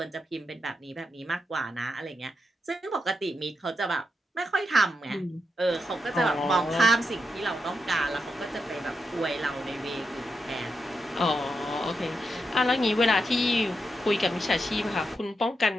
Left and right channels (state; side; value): normal; both; correlation 0.86